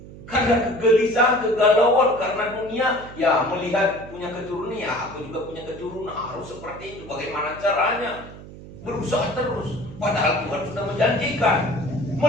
Karena kegelisahan, kegalauan karena dunia. Ya melihat punya keturunan, ya aku juga punya keturunan, harus seperti itu. Bagaimana caranya? Berusaha terus. Padahal Tuhan sudah menjanjikan.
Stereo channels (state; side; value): noise; right; hum, 16 dB below the sound